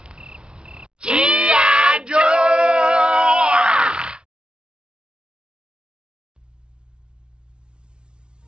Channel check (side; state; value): left; late; 0.053 ms